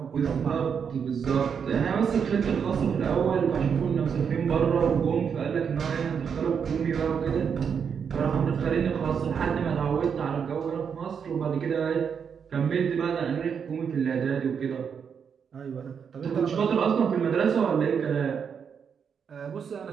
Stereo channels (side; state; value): left; quieter; 6.9 dB